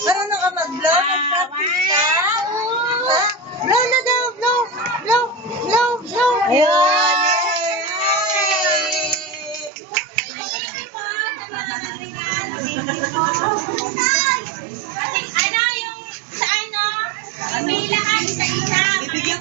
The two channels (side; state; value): left; drops out; at 9.7 s